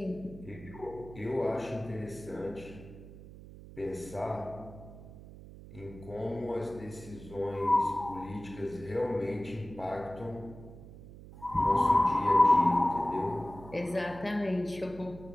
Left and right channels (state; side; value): noise; right; hum, 16 dB below the sound